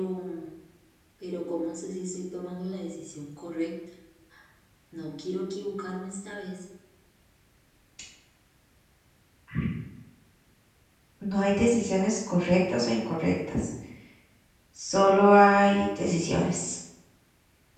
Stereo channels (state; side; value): identical; both; correlation 1.00